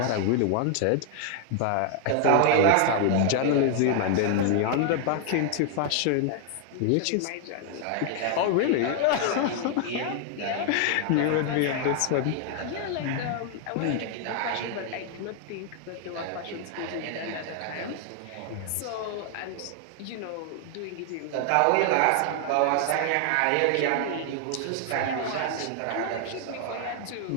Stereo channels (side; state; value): both; different; correlation 0.00